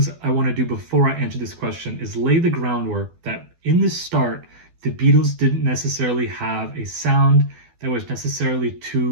I want to do before I answer this question is lay the groundwork that in the start, the Beatles didn't necessarily have a sound that was necessarily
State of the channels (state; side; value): late; left; 12 ms